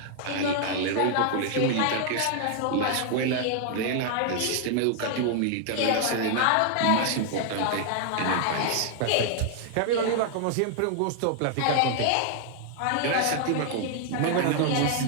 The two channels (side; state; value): both; different; correlation 0.00